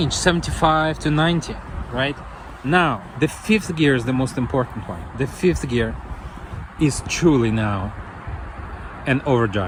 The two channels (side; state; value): both; identical; correlation 1.00